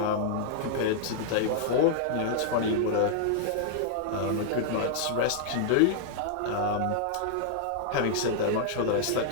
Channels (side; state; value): both; different; correlation -0.01